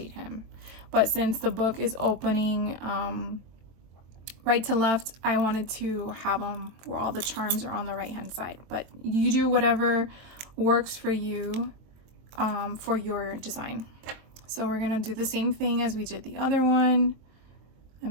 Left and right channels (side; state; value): left; late; 23 ms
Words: him. But since the book is opening right to left, I wanted to have them where all the charms are on the right hand side. But you do whatever works for you for your design. So we're gonna do the same thing as we did the other one.